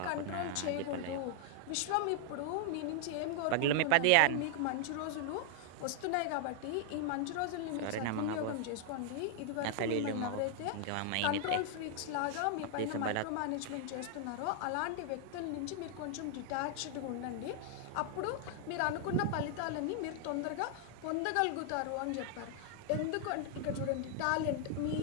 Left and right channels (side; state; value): both; different; correlation 0.00